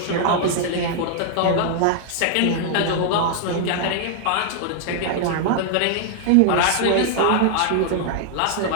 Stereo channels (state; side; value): different; both; correlation 0.00